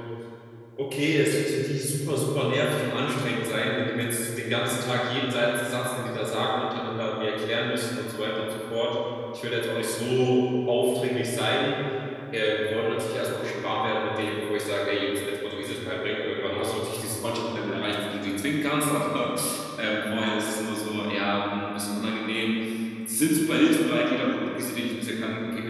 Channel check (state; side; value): identical; both; correlation 1.00